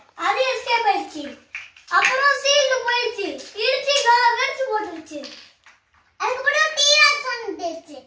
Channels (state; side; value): identical; both; correlation 1.00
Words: அது எஸ்கேப் ஆயிடுச்சு. அப்புறம் சீல்ட் போயிடுச்சு. இடிச்சு வெடிச்சு போட்டுருச்சு. அதுக்கு கூட டீராக்ஸ் வந்துச்சு.